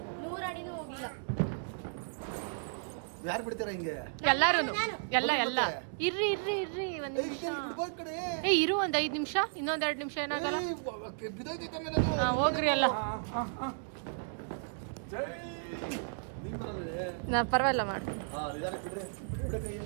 100 ಅಡಿನೂ ಹೋಗಿಲ್ಲ. ಯಾರು ಬಿಡ್ತೀರಾ ಹಿಂಗೆ? ಎಲ್ಲಾರು ಎಲ್ಲ ಇರ್ರಿ ಇರ್ರಿ ಇರ್ರಿ ಒಂದ್ ನಿಮಿಷ. ಇರು ಒಂದ್ 5 ನಿಮಿಷ. ಇನ್ನೊಂದ್ 2 ನಿಮಿಷ ಏನಾಗಲ್ಲ. ಹಾ ಹೋಗ್ರಿ ಅಲ್ಲ. ನಾ ಪರವಾಗಿಲ್ಲ ಮಾಡಿ.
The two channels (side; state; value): left; silent; digital silence